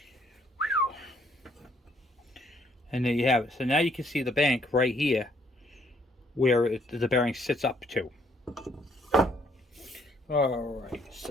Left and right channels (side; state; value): both; normal; correlation 0.67